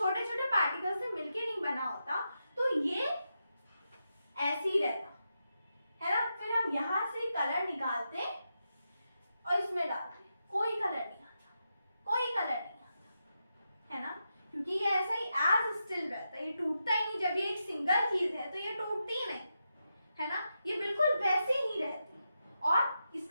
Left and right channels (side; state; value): both; inverted; correlation -0.87